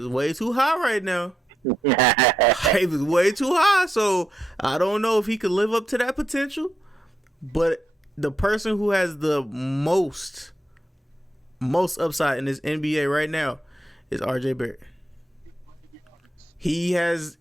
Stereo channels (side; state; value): both; normal; correlation 0.83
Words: way too high right now. Hype is way too high, so I don't know if he could live up to that potential. But the person who has the most upside in this NBA right now is RJ Barrett. He has